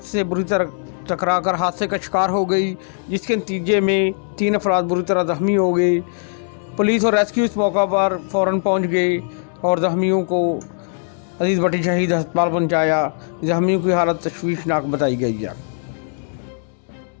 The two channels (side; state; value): right; silent; digital silence